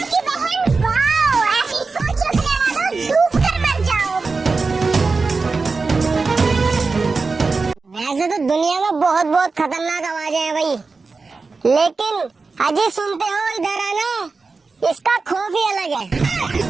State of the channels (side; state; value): left; quieter; 4.2 dB